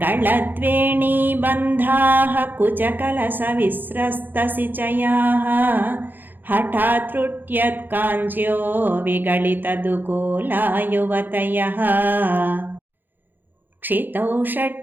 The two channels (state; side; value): late; left; 0.090 ms